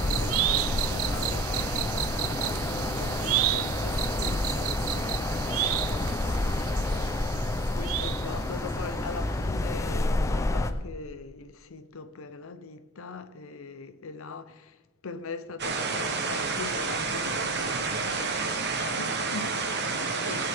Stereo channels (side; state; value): both; normal; correlation 0.41